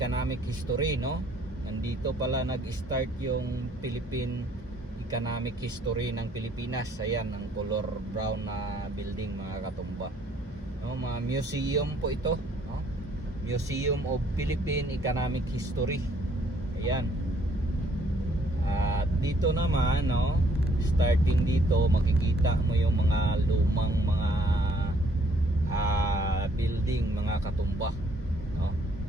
history, no? Nandito pala nag-start yung Philippine economic history ng Pilipinas. Ayan ang color brown na building mga katumba, no? Mga museum po ito, no? Museum of Philippine Economic History. Ayan. At dito naman, no, starting dito makikita mo yung mga lumang mga building mga katumba, no?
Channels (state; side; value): normal; both; correlation 0.64